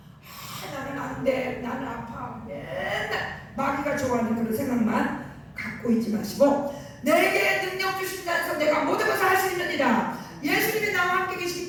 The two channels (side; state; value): both; identical; correlation 1.00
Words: 나는 안 돼, 나는 아파, 맨날 마귀가 좋아하는 그런 생각만 갖고 있지 마시고 내게 능력 주신 자에서 내가 모든 것을 할 수 있느니라. 예수님이 나와 함께 계시기